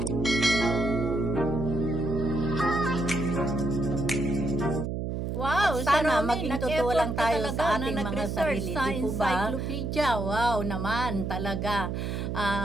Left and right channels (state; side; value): noise; right; hum, 3 dB below the sound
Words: Wow, sana maging totoo lang tayo sa ating mga sarili, di po ba? Encyclopedia, wow naman talaga.